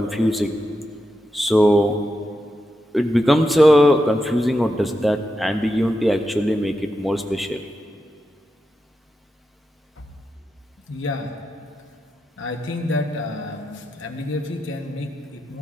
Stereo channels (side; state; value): both; normal; correlation 0.87